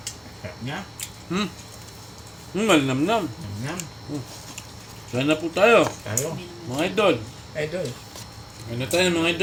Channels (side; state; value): both; identical; correlation 1.00